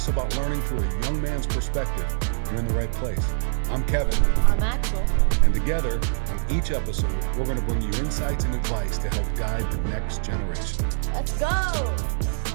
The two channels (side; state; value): left; silent; 62 dB below the other